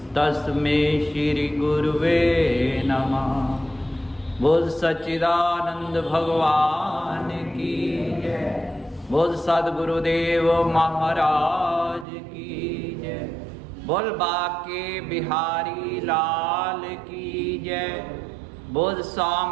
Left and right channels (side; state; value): left; drops out; at 12.1 s